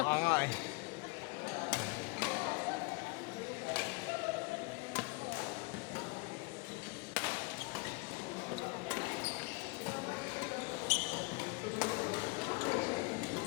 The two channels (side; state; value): right; quieter; 28.6 dB